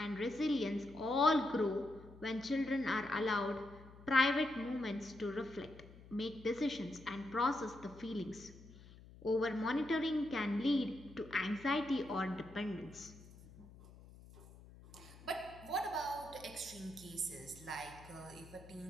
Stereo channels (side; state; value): left; noise; hum, 19 dB below the sound